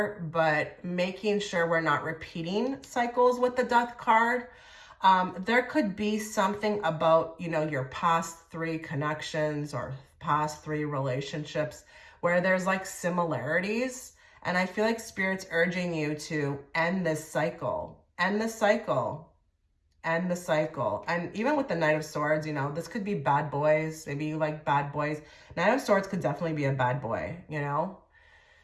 but making sure we're not repeating cycles with the Death card. There could be something about, you know, your past 3 connections or past 3 relationships where there's like similarities. And I feel like Spirit's urging you to end this cycle, end the cycle, end the cycle. And even with the Knight of Swords, you know, this could be bad boys. Maybe you like bad boys. Knight of Swords could definitely be a bad boy, you know.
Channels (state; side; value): identical; both; correlation 1.00